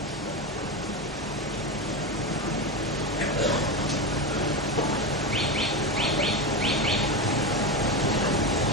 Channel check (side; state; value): both; normal; correlation 0.17